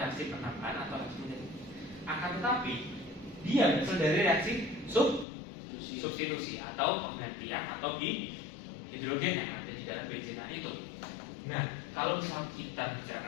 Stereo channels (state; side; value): drops out; right; at 5.2 s